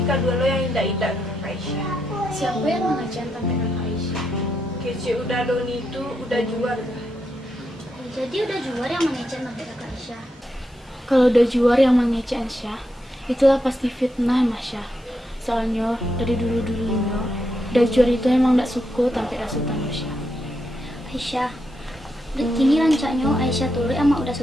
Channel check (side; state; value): both; normal; correlation 0.82